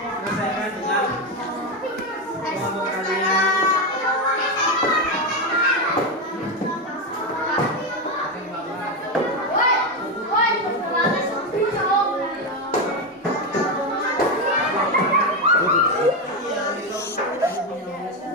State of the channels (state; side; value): normal; both; correlation 0.11